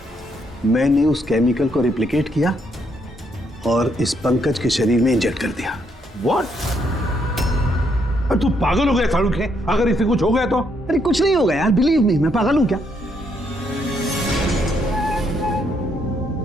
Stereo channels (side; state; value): both; normal; correlation 0.74